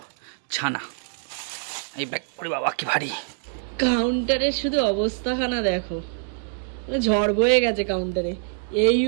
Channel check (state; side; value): silent; left; digital silence